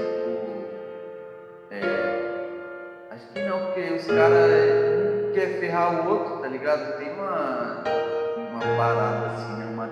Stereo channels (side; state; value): both; identical; correlation 1.00